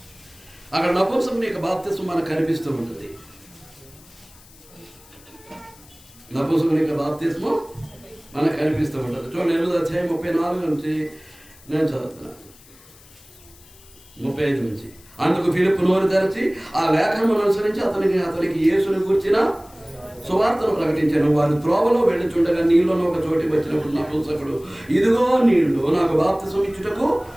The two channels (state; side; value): noise; left; hiss, 24 dB below the sound